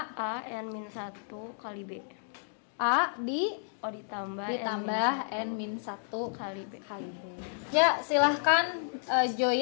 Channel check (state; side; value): silent; right; digital silence